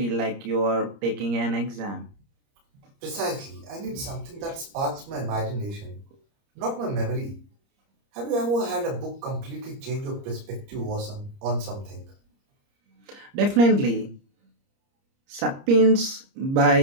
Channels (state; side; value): late; left; 30 ms